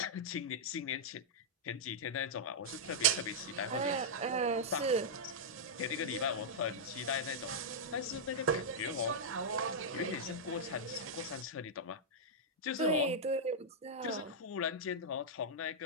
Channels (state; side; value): normal; both; correlation -0.07